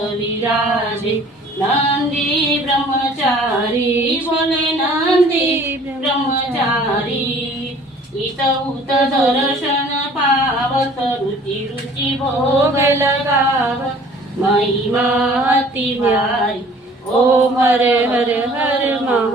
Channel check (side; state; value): both; normal; correlation 0.52